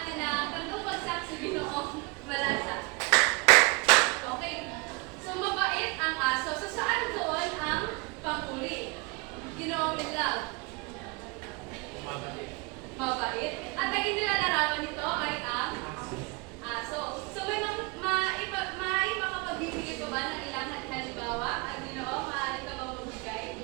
ng kantong bagsak sa Ginoong Malasa. Okay, so mabait ang aso. So saan doon ang panguri? Ginoong Love? Mabait. At naging nilalarawan nito ay ang aso. So may makapagbibigay pa ba ng ilang halimbawa? Ang Ginoo, maaari ka ba magbigay?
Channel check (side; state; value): left; quieter; 28.6 dB